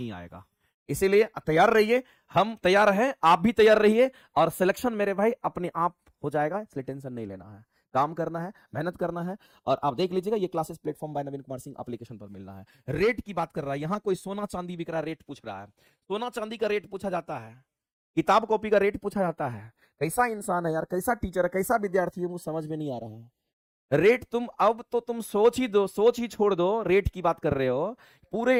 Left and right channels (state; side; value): identical; both; correlation 1.00